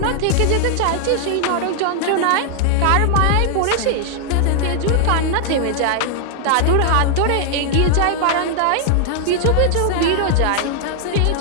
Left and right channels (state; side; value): different; both; correlation 0.00